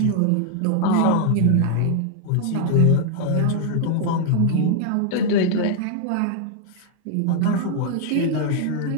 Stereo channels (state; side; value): different; both; correlation 0.00